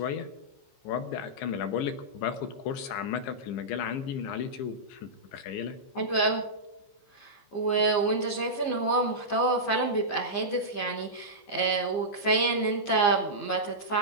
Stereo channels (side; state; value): right; late; 15 ms